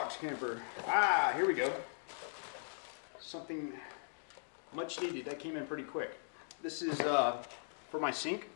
camper. Ah, here we go. Something much needed. That came in pretty quick. This is for my sink,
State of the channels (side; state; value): right; silent; digital silence